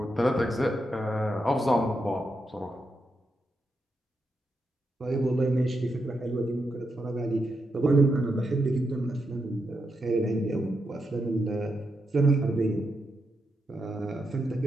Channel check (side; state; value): both; normal; correlation 0.84